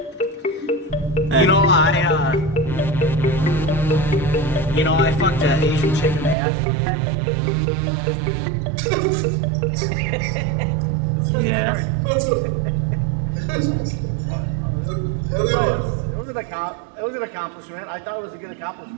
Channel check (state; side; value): drops out; left; at 6.4 s